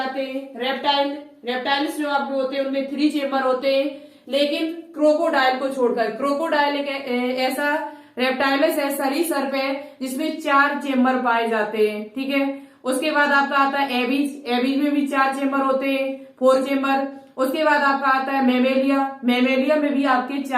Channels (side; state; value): both; identical; correlation 1.00